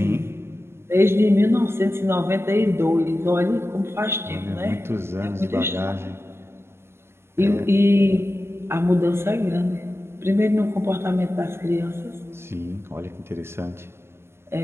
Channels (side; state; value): left; late; 0.12 ms